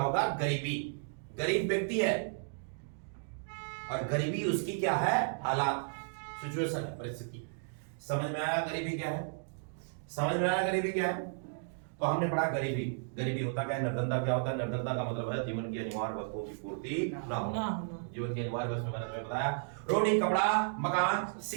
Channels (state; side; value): silent; left; digital silence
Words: गरीबी। गरीब व्यक्ति है और गरीबी उसकी क्या है, हालात, सिचुएशन है, परिस्थिति। समझ में आया गरीबी क्या है, समझ में आया गरीबी क्या है। तो हमने पढ़ा गरीबी, गरीबी होता क्या है, निर्धनता क्या होता है। निर्धनता का मतलब है जीवन की अनिवार्य वस्तुओं की पूर्ति ना होना। जीवन की अनिवार्य वस्तु मैंने तुम्हें बताया, रोटी, कपड़ा, मकान,